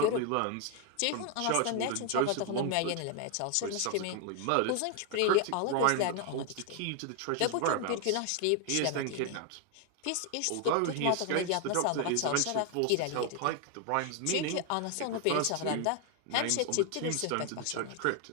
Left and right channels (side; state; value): both; different; correlation 0.01